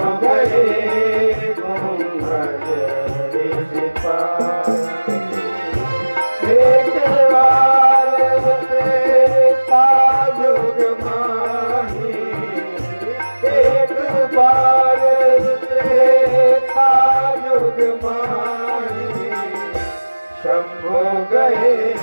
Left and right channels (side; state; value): both; inverted; correlation -1.00